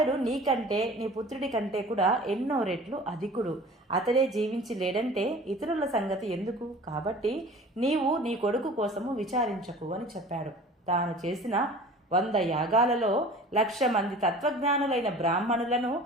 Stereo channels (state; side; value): normal; both; correlation 0.43